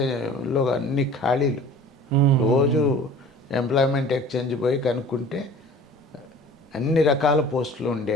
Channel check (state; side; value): normal; both; correlation 0.45